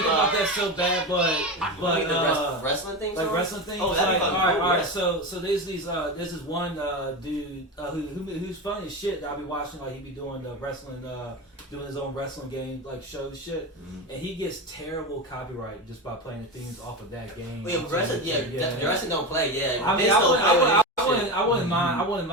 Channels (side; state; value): both; normal; correlation 0.21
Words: about that so bad, but Wait, the wrestling thing? like wrestling things. Oh, that'd like, be all fucking right, cool, all right. yeah. So there's this one dude who's funny as shit that I be watching. Like he be doing the wrestling, doing his own wrestling game like show shit, and he gets terrible copyright just by playing the themes off of that game. Well, yeah, wrestling, the wrestling don't play, yeah. I mean, Vince don't play I wouldn't